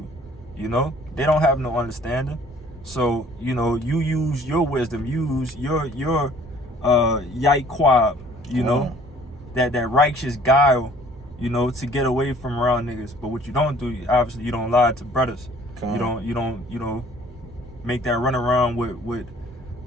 You know, they don't have no understanding. So, you know, you use your wisdom, use your yaikwab, you know, that righteous guile, you know, to get away from around niggas. But what you don't do, obviously, you don't lie to brothers. You don't, you know, make that run around with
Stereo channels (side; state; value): both; normal; correlation 0.54